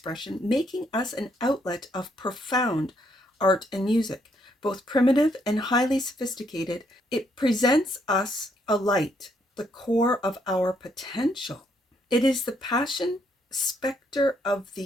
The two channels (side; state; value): both; normal; correlation 0.72